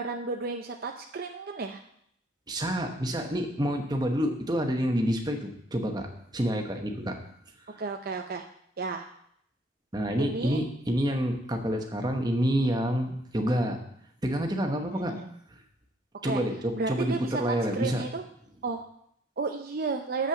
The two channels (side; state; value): both; normal; correlation 0.66